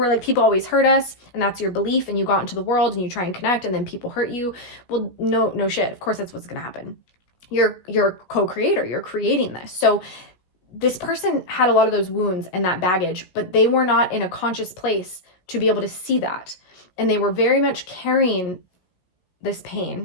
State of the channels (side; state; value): right; late; 16 ms